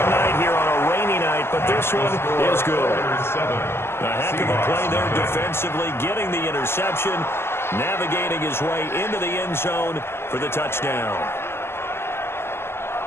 night here on a rainy night, but this one is good. A heck of a play there defensively, getting the interception, navigating his way into the end zone for the touchdown.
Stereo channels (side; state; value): right; late; 0.12 ms